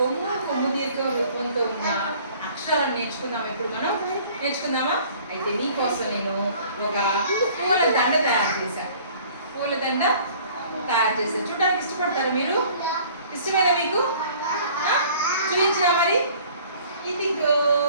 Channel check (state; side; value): inverted; both; correlation -0.52